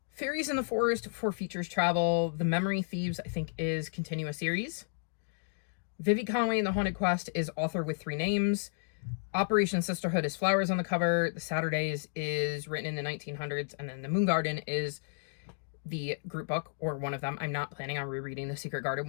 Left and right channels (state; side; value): silent; right; digital silence